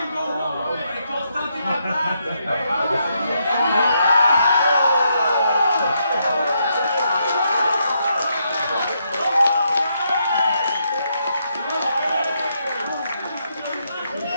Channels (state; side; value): inverted; both; correlation -0.78